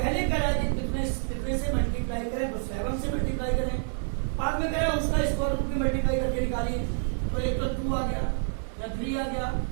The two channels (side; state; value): left; silent; digital silence